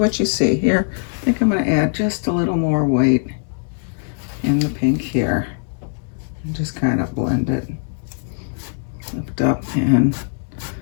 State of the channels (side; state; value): right; silent; digital silence